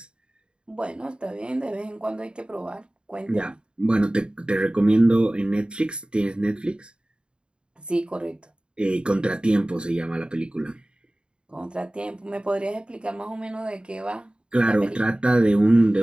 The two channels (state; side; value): late; left; 0.052 ms